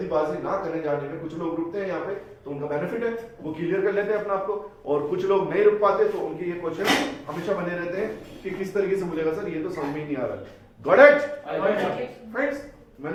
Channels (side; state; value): both; identical; correlation 1.00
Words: ना करने जाने में, कुछ लोग रुकते हैं यहाँ पे तो उनका बेनिफिट है, वो क्लियर कर लेते हैं अपने आप को, और कुछ लोग नहीं रुक पाते तो उनके ये क्वेश्चन हमेशा बने रहते हैं कि किस तरीके से बोलेगा सर, ये तो समझ में ही नहीं आ रहा, got it I got it. Friends,